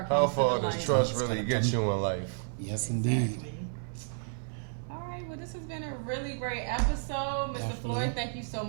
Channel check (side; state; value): left; silent; 57 dB below the other